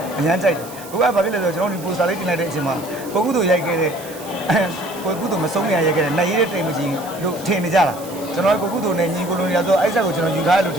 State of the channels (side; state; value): right; noise; hiss, 17 dB below the sound